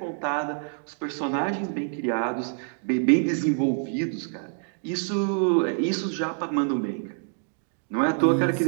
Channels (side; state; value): left; silent; 56 dB below the other